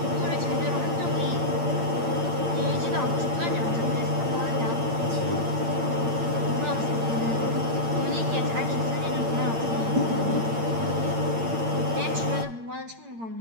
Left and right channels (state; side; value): late; left; 8.8 ms